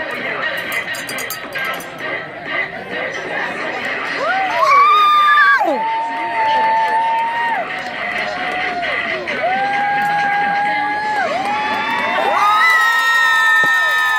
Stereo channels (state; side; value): identical; both; correlation 1.00